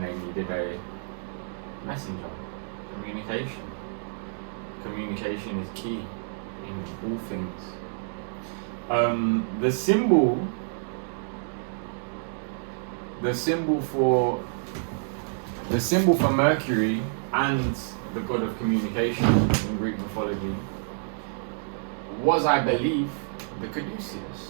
they needed a messenger. Communication. Communication is key in all things. The symbol for Mercury and the god of communication in Greek mythology was, I believe, the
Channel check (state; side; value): silent; left; digital silence